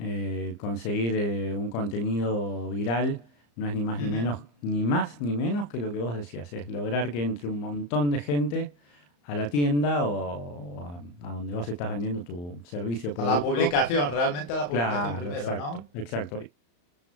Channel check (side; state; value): right; late; 34 ms